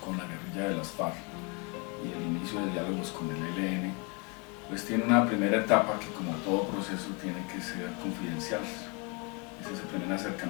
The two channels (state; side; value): quieter; right; 32.1 dB